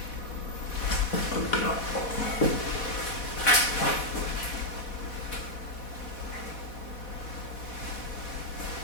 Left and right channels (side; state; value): right; late; 4.1 ms